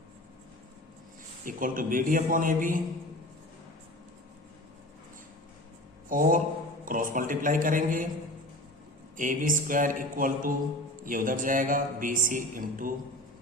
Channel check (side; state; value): both; normal; correlation 0.35